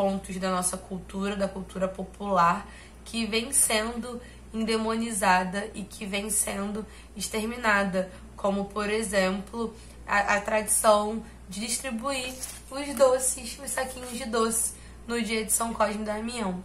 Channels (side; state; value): both; identical; correlation 1.00